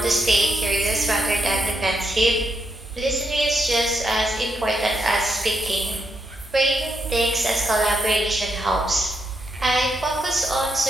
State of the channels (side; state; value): both; normal; correlation 0.81